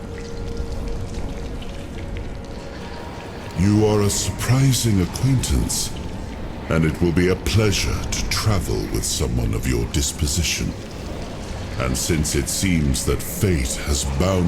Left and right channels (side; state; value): both; identical; correlation 1.00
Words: You are a surprising acquaintance, and it will be a pleasure to travel with someone of your disposition. And since it seems that fate has